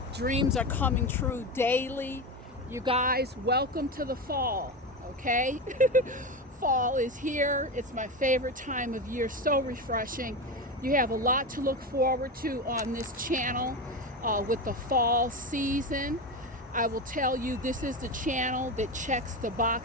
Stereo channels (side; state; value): both; normal; correlation 0.20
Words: Dreams are coming true daily. You guys, welcome to the fall, okay? Fall is here. It's my favorite time of year. So refreshing. You have a lot to look forward to on this channel with the fall season. I will tell you, this is the channel that checks the